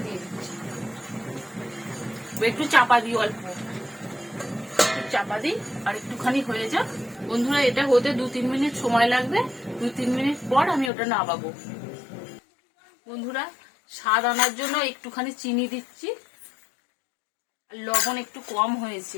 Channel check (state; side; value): drops out; right; at 10.9 s